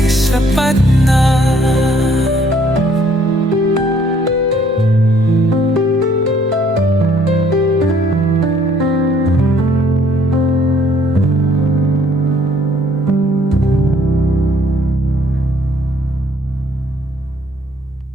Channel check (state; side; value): normal; both; correlation 0.62